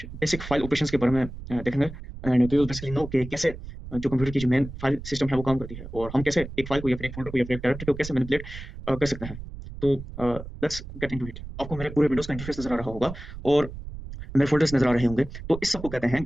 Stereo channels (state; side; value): noise; right; rumble, 11 dB below the sound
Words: बेसिक फाइल ऑपरेशंस के बारे में देखेंगे and we will basically know कि कैसे जो कंप्यूटर की जो मेन फाइल सिस्टम है वो काम करती है और हम कैसे एक फाइल को या फिर एक फोल्डर को या फिर एक डायरेक्टरी को कैसे मैनिपुलेट कर सकते हैं। तो लेट्स गेट इनटू इट। आपको मेरे पूरे विंडोज का इंटरफेस नजर आ रहा होगा और मेरे फोल्डर्स नजर आ रहे होंगे। तो इस सबको कहते हैं